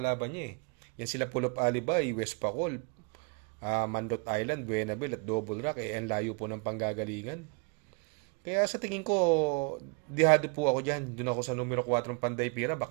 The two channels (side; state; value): left; quieter; 35.2 dB